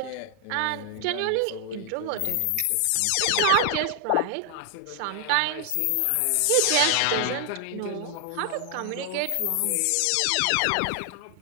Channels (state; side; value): different; both; correlation 0.00